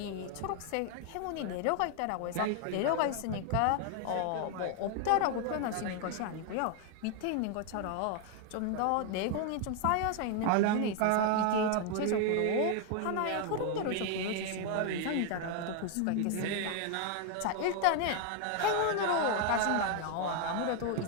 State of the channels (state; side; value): different; both; correlation 0.00